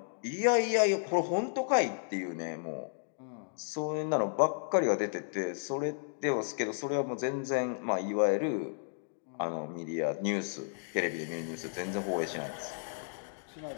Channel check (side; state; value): right; silent; digital silence